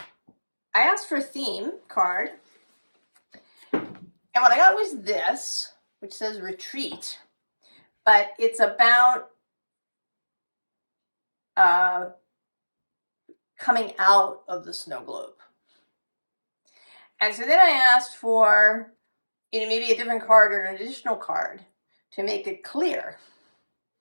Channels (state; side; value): inverted; both; correlation -1.00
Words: asked for a theme card, and what I got was this, which says retreat, but it's about coming out of the snow globe. And so then I asked for, maybe a different card or an additional card to make it clear.